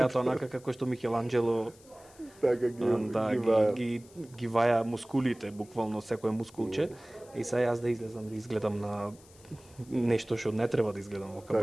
онака како што Микеланџело Така ги ваја мускулите, буквално секое мускулче. И сега јас да излезам да изгледам на нешто што не треба да изгледам во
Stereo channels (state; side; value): noise; left; hiss, 25 dB below the sound